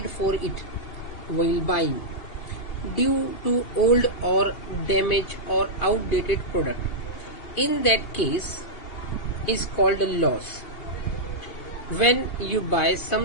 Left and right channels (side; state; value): right; late; 2.8 ms